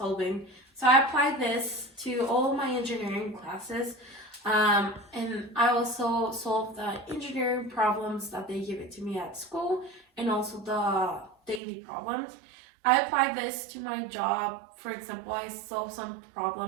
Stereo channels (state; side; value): drops out; left; at 11.6 s